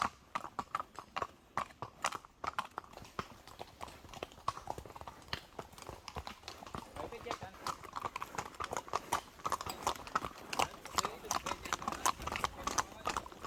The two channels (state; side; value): identical; both; correlation 1.00